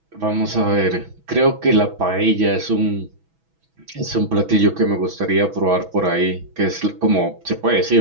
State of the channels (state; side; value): late; left; 6.1 ms